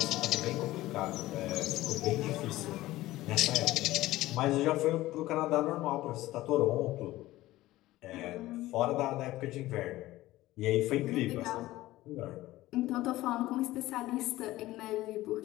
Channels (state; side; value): quieter; right; 16.8 dB